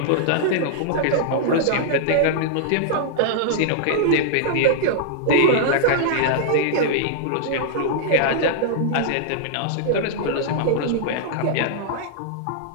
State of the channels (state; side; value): different; both; correlation -0.01